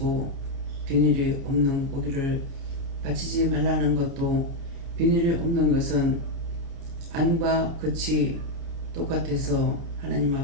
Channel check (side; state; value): left; late; 29 ms